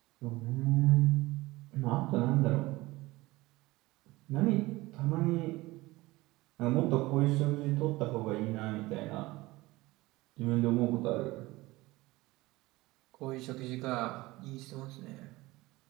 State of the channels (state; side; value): quieter; left; 20.1 dB